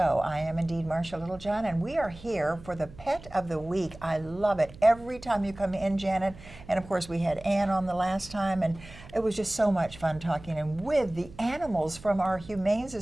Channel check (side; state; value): right; noise; hum, 18 dB below the sound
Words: I am indeed Marcia Littlejohn, and we are here for the Pet of the Week. I love it every time you come in, Janet. And of course, we had Ann on the last time, and it was just so much fun talking and with the animals from our Humane